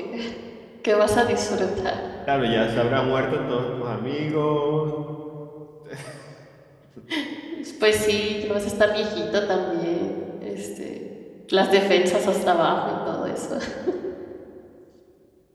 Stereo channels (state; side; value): identical; both; correlation 1.00